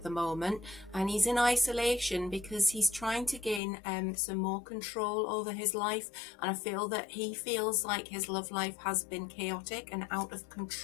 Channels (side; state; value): right; drops out; at 3.6 s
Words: the moment, and he's in isolation because he's trying to gain some more control over his life. And I feel that he feels like his love life has been chaotic and out of